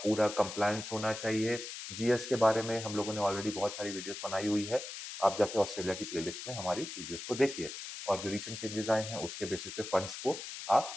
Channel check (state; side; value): noise; left; hiss, 9 dB below the sound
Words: कंप्लायंस होना चाहिए। जीएस के बारे में हम लोगों ने ऑलरेडी बहुत सारी वीडियोस बनाई हुई है, आप जाके ऑस्ट्रेलिया की प्लेलिस्ट में हमारी वीडियोस को देखिए और जो रिसेंट चेंजेस आए हैं उसके बेसिस पे फंड्स को